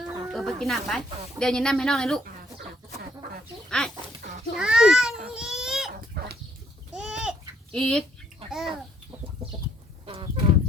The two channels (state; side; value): normal; both; correlation 0.67